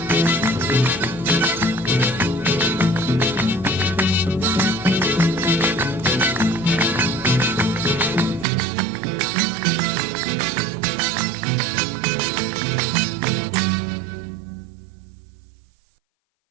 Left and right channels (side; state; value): left; drops out; at 8.5 s